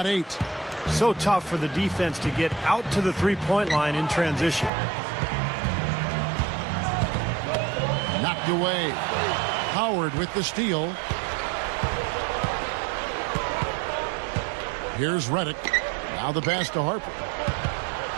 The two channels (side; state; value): left; drops out; at 4.7 s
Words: 8. So tough for the defense to get out to the three-point line in transition. Knocked away. Howard with the steal. Here's Reddick. Now the pass to Harper.